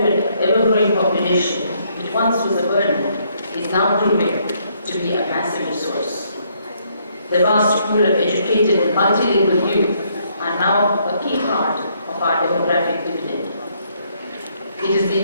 population, which once was a burden, is now proving to be a massive resource. The vast pool of educated and multilingual youth are now a key part of our demographic dividend. It is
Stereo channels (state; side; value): inverted; both; correlation -0.70